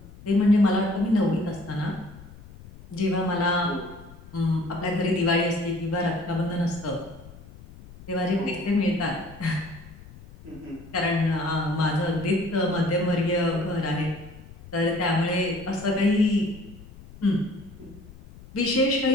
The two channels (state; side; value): noise; left; rumble, 19 dB below the sound